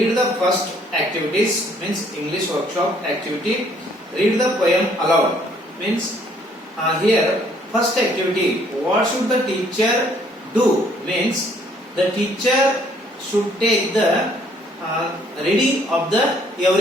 the first activities, means English workshop activity. Read the poem aloud, means here first activity, what should the teacher do, means the teacher should take the reading of the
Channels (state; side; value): normal; both; correlation 0.63